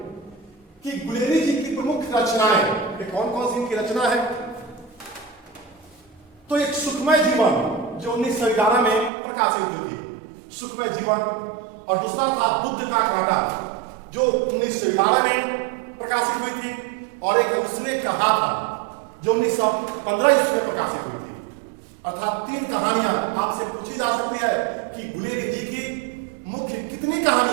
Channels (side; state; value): left; drops out; at 9.1 s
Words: कि गुलेरी जी की प्रमुख रचनाएं कौन कौन सी इनकी रचना है। तो एक सुखमय जीवन जो 1911 में प्रकाशित हुई थी, सुखमय जीवन, और दूसरा था बुद्ध का कांटा जो 1911 में प्रकाशित हुई थी, और एक उसने कहा था जो 1915 ईस्वी में प्रकाशित हुई थी। अर्थात 3 कहानियां आपसे पूछी जा सकती है कि गुलेरी जी की मुख्य कितनी